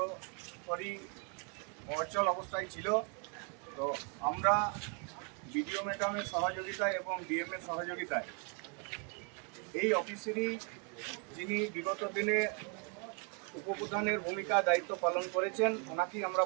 অচল অবস্থায় ছিল। তো আমরা বিডিও ম্যাডামের সহযোগিতায় এবং ডিএমের সহযোগিতায় এই অফিসেরই যিনি বিগত দিনে উপপ্রধানের ভূমিকা দায়িত্ব পালন করেছেন, ওনাকেই আমরা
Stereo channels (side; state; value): left; quieter; 37.0 dB